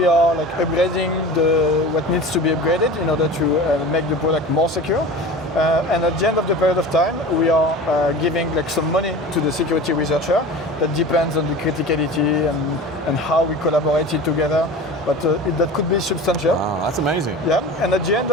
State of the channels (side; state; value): both; normal; correlation 0.35